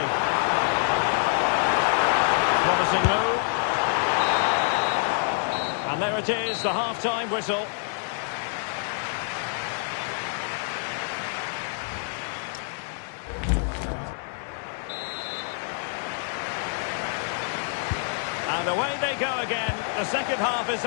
Promising move. And there it is, the half-time whistle. And away they go again. The second half is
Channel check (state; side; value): silent; right; 61 dB below the other